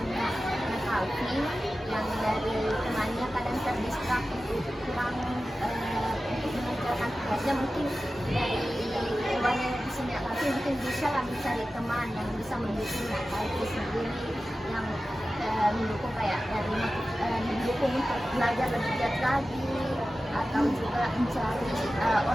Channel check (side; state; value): both; normal; correlation 0.94